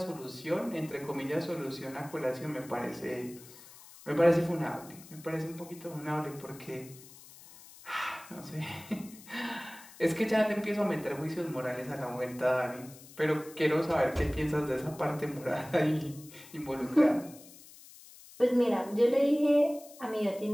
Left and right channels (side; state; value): left; noise; hiss, 20 dB below the sound